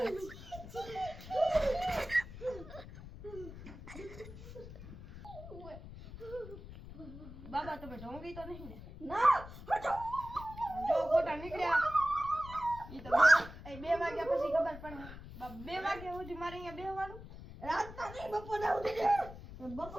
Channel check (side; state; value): left; noise; rumble, 14 dB below the sound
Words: બાબા તમે ઢોંગી તો નહીં ને? ના હટો. જો ફોટા નીકળ્યા ઈ તો 2 વાગ્યા પછી ખબર પડે. 2 વાગ્યા સુધી મારે અહીંયા બેહવાનું. રાતના નહીં બપોરના સુધી